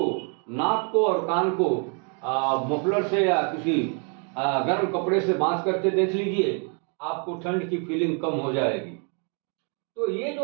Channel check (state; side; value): quieter; left; 39.6 dB